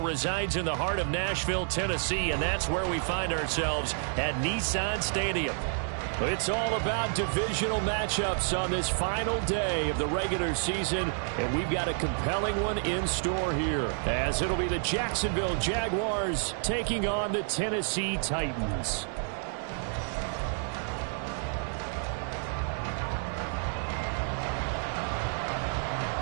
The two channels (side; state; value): left; silent; 55 dB below the other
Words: Football resides in the heart of Nashville, Tennessee, and that's where we find ourselves at Nissan Stadium. It's all about divisional matchups on this final day of the regular season, and we've got a compelling one in store here, as it'll be the Jacksonville Jaguars taking on the Tennessee Titans.